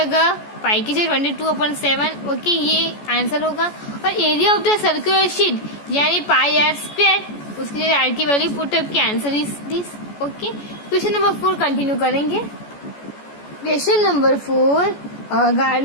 पाई की जगह 22/7। ओके, ये आंसर होगा। और area of the circular sheet यानी पाई आर स्क्वायर, उसकी जगह आर की वैल्यू पुटअप की, answer is this. Okay, question number 4 continue करेंगे। Question number 4,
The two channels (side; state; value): right; late; 14 ms